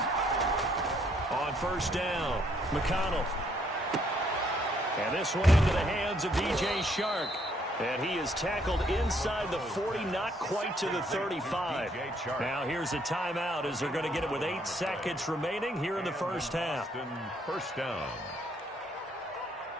first down. McConnell. And this one into the hands of DJ Chark. And he is tackled inside the 40, not quite to the 35. Now here's a timeout as they're going to get it with 8 seconds remaining here in the first half. First down.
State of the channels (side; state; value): both; normal; correlation 0.69